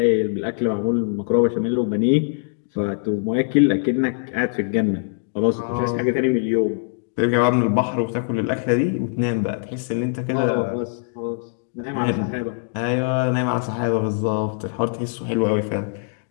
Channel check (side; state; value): right; silent; digital silence